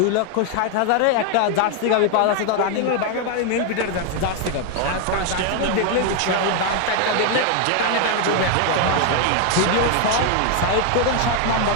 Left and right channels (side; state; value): both; different; correlation 0.01